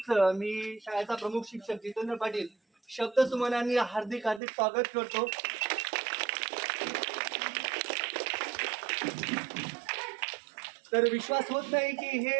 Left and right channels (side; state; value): left; drops out; at 4.4 s